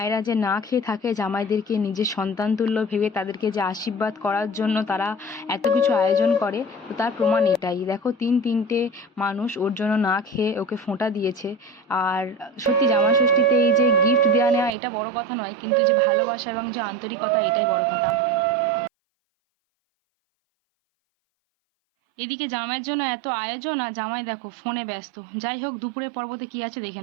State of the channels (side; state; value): left; drops out; at 14.7 s